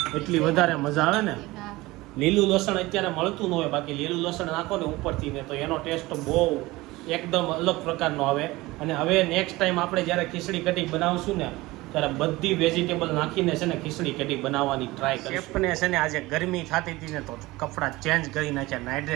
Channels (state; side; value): quieter; left; 20.1 dB